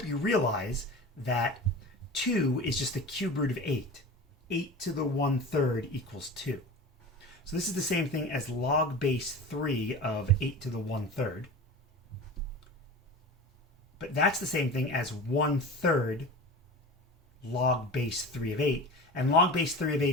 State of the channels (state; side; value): normal; both; correlation 0.33